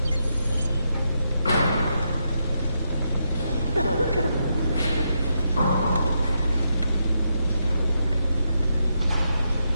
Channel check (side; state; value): both; inverted; correlation -0.82